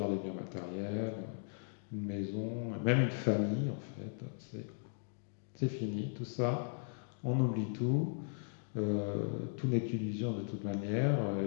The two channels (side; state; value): right; silent; digital silence